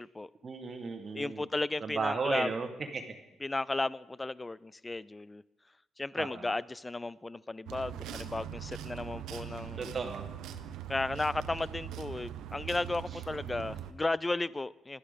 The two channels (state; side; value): normal; both; correlation 0.90